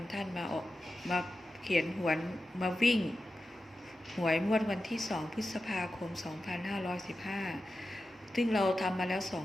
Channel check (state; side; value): normal; both; correlation 0.92